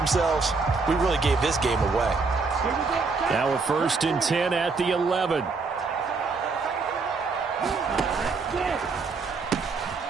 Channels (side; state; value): left; quieter; 4.4 dB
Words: we really gave this game away. Now a 1st and 10 at the 11.